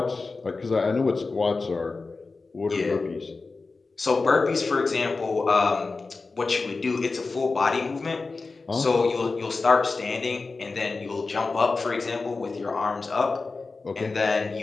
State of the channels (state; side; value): quieter; right; 3.9 dB